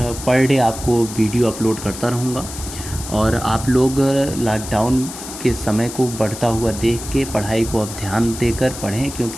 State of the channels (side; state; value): left; noise; hiss, 11 dB below the sound